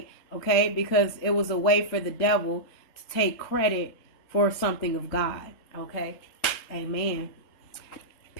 Okay? Because it was a way for the devil to take credit for something of God, okay? Amen.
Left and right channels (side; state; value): right; late; 3.7 ms